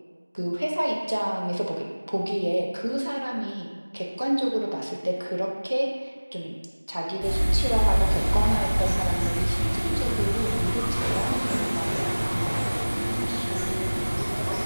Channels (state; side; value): inverted; both; correlation -1.00